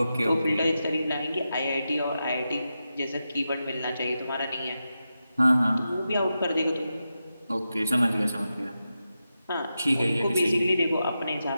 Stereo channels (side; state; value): both; inverted; correlation -0.90